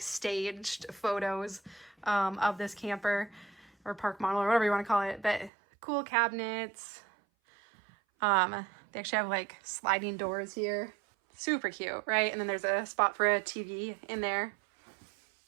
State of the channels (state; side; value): drops out; left; at 5.5 s